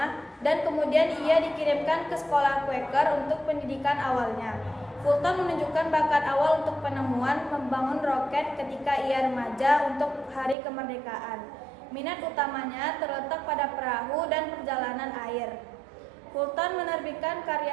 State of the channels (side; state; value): left; drops out; at 10.6 s